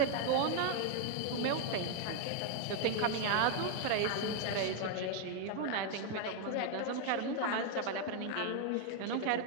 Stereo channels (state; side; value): different; both; correlation 0.01